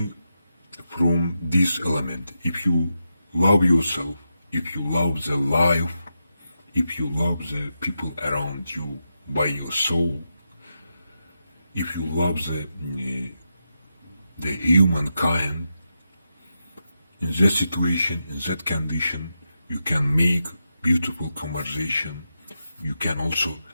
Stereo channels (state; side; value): inverted; both; correlation -0.87